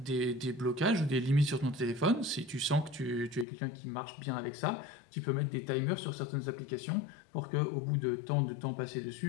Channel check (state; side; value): drops out; right; at 3.5 s